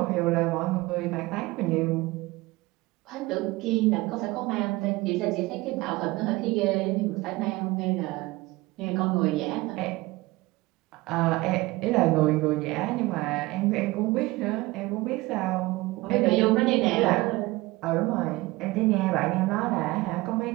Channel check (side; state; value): left; quieter; 20.9 dB